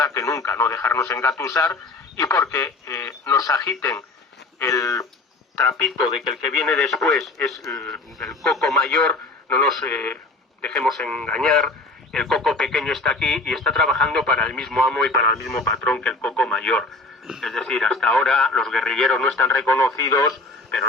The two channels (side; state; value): right; quieter; 3.2 dB